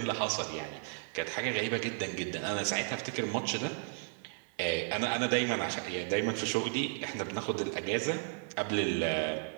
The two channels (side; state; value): left; silent; 55 dB below the other